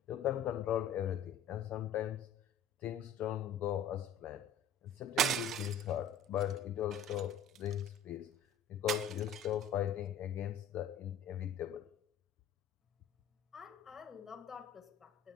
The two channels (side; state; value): right; quieter; 4.7 dB